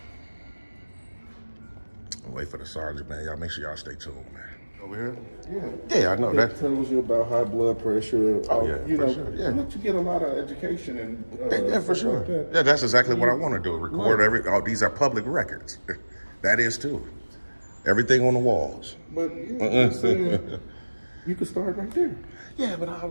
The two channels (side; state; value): both; inverted; correlation -1.00